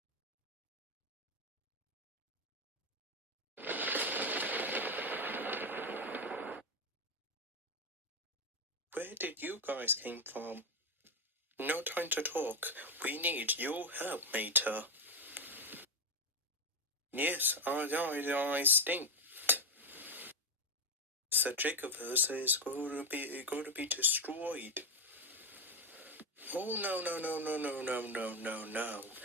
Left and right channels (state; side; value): normal; both; correlation 0.07